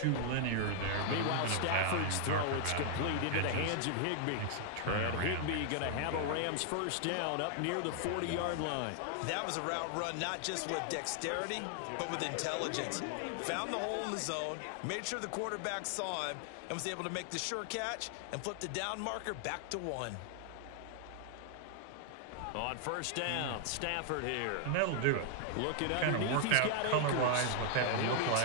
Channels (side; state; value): both; different; correlation 0.00